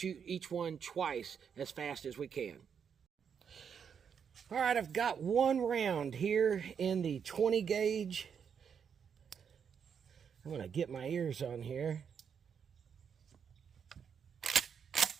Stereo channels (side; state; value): left; quieter; 7.2 dB